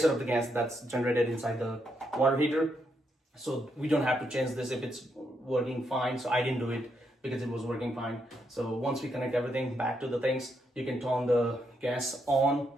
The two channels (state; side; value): normal; both; correlation 0.79